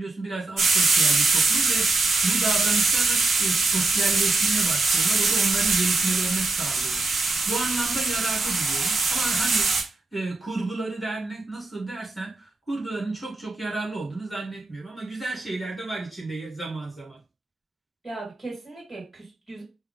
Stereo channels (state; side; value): quieter; left; 3.3 dB